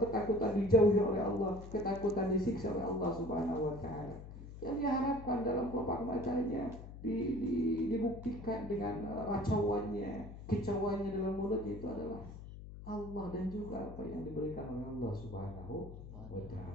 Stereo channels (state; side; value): noise; left; hum, 13 dB below the sound